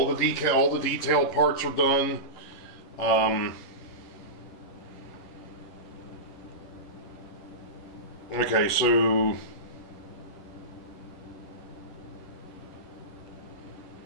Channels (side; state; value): right; late; 11 ms